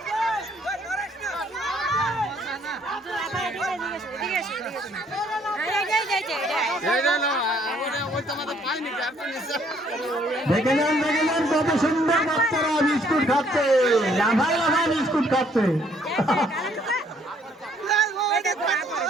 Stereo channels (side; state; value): both; normal; correlation 0.64